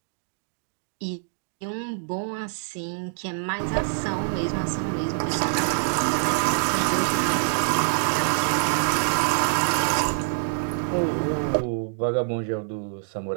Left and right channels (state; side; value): silent; left; digital silence